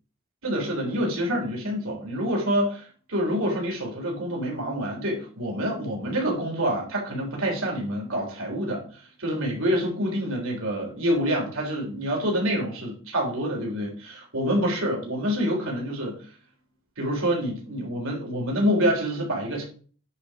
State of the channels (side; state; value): both; normal; correlation 0.21